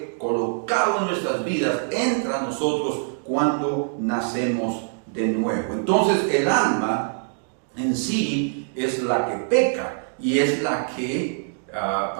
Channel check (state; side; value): silent; left; digital silence